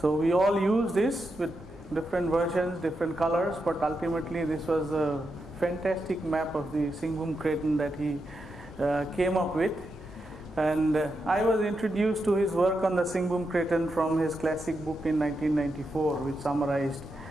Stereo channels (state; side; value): noise; right; hum, 28 dB below the sound